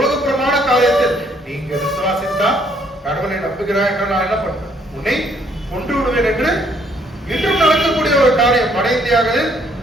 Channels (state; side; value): normal; both; correlation 0.66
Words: காரியத்தில் நீங்க விசுவாசித்தா கடவுளை நம்புகிறாய் என்று நான் என்ன பண்றேன்? உன்னை கொன்று விடுவேன் என்று இன்றும் நடக்கக்கூடிய ஒரு காரியம். வட இந்தியாவில்